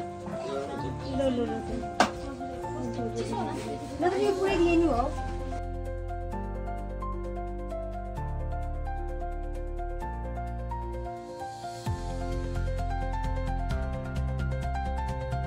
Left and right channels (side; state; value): both; identical; correlation 1.00